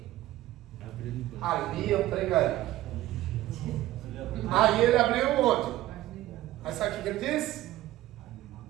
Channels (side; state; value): left; quieter; 15.4 dB